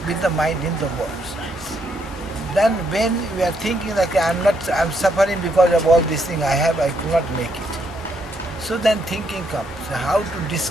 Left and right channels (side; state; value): both; normal; correlation 0.75